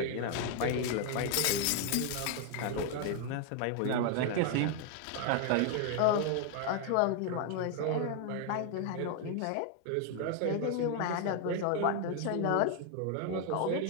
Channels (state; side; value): different; both; correlation 0.00